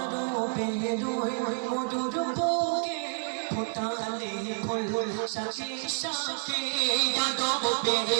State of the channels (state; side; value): silent; left; digital silence